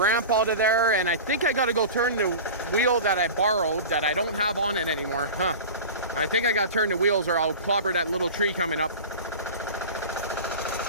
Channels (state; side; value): inverted; both; correlation -0.33